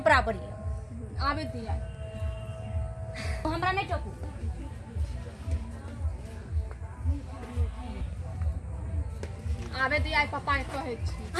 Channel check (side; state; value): both; identical; correlation 1.00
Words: है। आबे दिया हमरा नहीं टोकू। आबे दिया पप्पा के कहै छी।